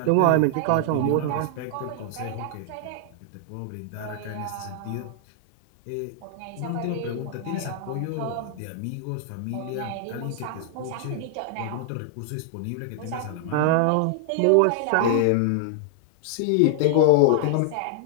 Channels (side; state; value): both; different; correlation -0.01